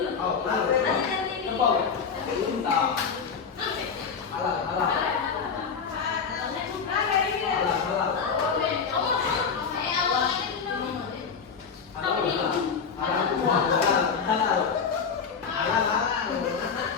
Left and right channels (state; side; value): quieter; right; 6.0 dB